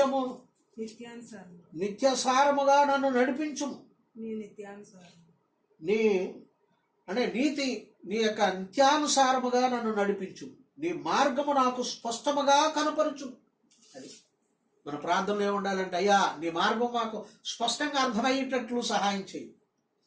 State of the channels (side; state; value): both; identical; correlation 1.00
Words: నిత్యసారముగా నన్ను నడిపించుము. నీ అంటే నీతి నీ యొక్క నిత్యానుసారముగా నన్ను నడిపించు. నీ మార్గము నాకు స్పష్టముగా కనపరచు. అది మన ప్రార్థనలో ఏముండాలంటే, అయ్యా నీ మార్గం మాకు స్పష్టంగా అర్థమయ్యేటట్లు సహాయం చేయి,